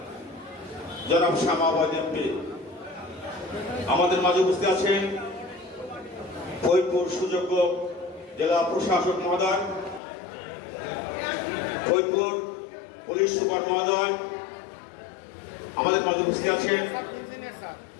জনাব শামা আওয়াজ এমপি, আমাদের মাঝে উপস্থিত আছেন ফরিদপুর সুযোগ্য জেলা প্রশাসক মহোদয়, ফরিদপুর পুলিশ সুপার মহোদয়, আমাদের মাঝে উপস্থিত আছেন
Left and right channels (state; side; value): drops out; right; at 10.0 s